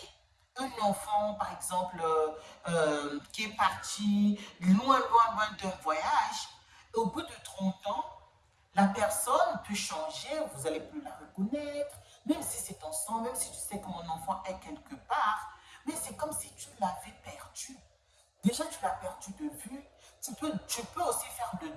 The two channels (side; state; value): both; identical; correlation 1.00